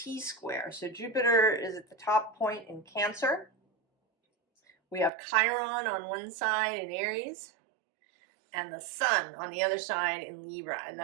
So Jupiter is at the top point in Cancer. We have Chiron on one side in Aries, and the Sun on the other side in Libra. And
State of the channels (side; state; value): left; drops out; at 5.1 s